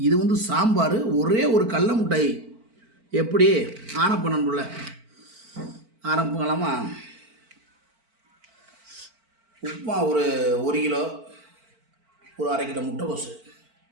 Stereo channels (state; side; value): late; left; 4.5 ms